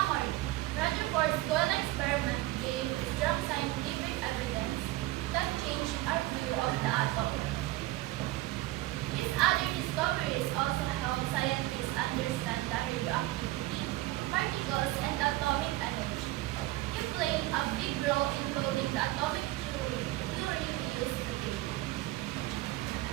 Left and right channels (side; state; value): left; quieter; 17.6 dB